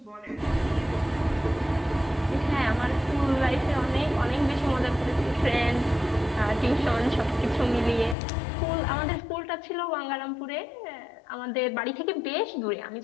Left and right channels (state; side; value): drops out; right; at 8.2 s